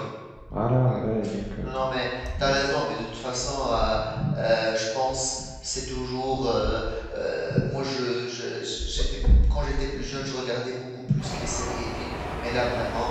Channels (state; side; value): identical; both; correlation 1.00